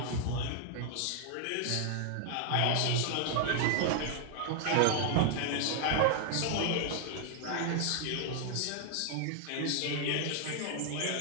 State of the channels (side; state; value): both; different; correlation 0.00